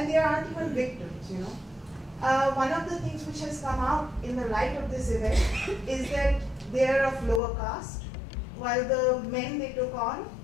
they aren't even victims, One of the things which has come out in the light of this event is that they are of lower caste, while the men they took on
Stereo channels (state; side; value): drops out; right; at 7.4 s